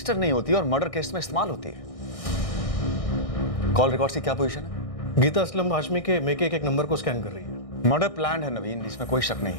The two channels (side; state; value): right; late; 1.6 ms